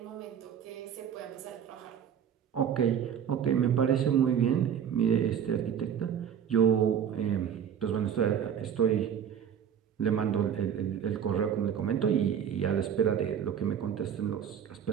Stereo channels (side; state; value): left; quieter; 8.5 dB